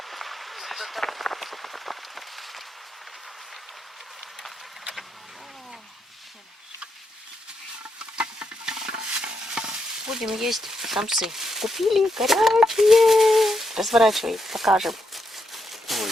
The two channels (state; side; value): normal; both; correlation 0.81